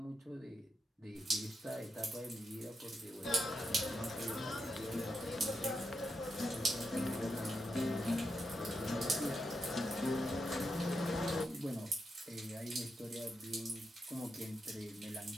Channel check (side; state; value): both; normal; correlation 0.85